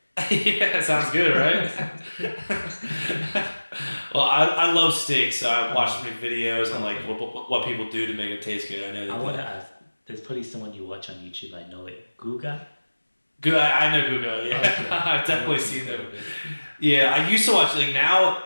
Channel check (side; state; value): both; inverted; correlation -1.00